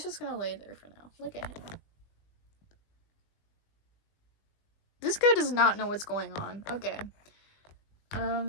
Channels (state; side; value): late; right; 20 ms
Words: just gonna lay there for now. Look at him. This guy does not know what's going on. Okay.